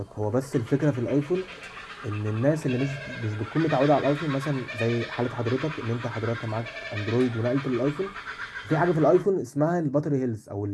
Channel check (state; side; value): identical; both; correlation 1.00